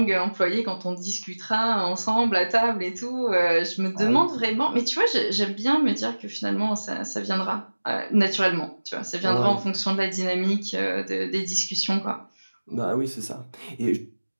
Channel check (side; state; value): both; inverted; correlation -1.00